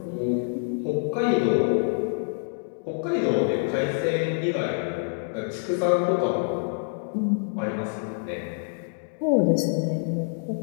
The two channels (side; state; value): right; silent; digital silence